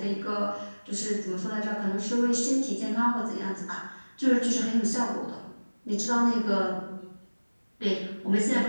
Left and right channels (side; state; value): both; inverted; correlation -1.00